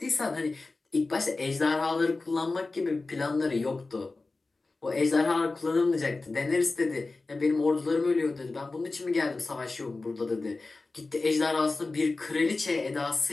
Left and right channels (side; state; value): right; quieter; 3.5 dB